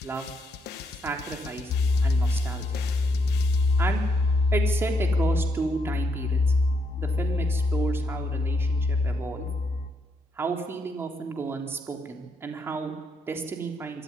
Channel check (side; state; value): both; normal; correlation 0.77